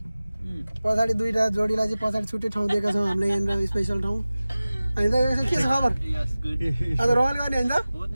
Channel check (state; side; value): inverted; both; correlation -0.97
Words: पछाडि 2टा जोडीलाई चाहिँ पछाडि छुट्टै ठाउँ दिएका छौँ हामीले यहाँनिर स्पेसल ठाउँ होइन त के छ खबर आज रमाइलो गर्ने होइन त